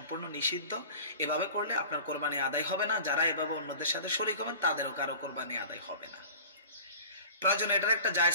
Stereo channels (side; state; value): both; inverted; correlation -0.40